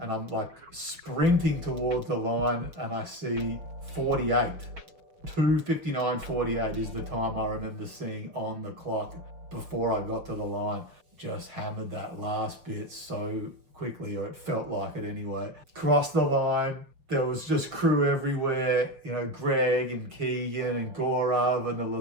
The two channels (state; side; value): late; left; 6.1 ms